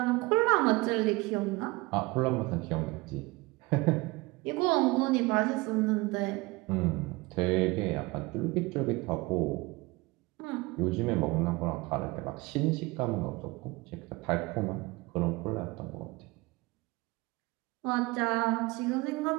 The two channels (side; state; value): left; quieter; 23.1 dB